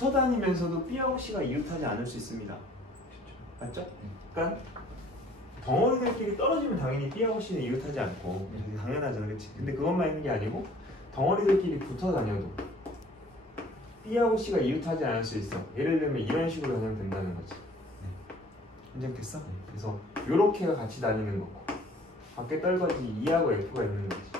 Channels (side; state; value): both; normal; correlation 0.53